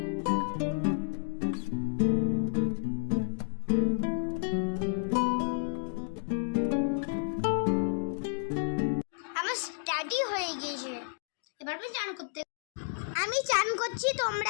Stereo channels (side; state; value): right; silent; digital silence